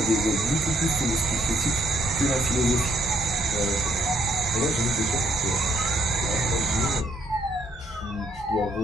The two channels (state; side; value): normal; both; correlation 0.69